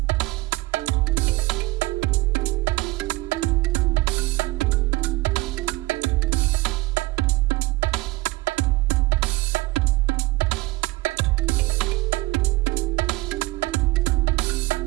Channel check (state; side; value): quieter; left; 20.5 dB